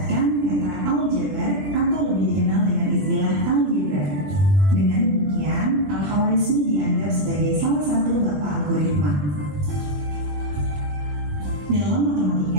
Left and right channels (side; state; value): left; late; 20 ms